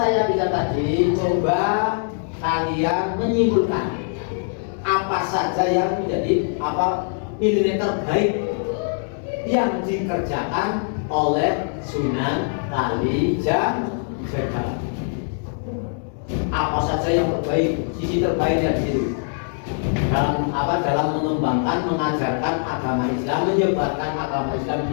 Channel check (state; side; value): silent; right; 64 dB below the other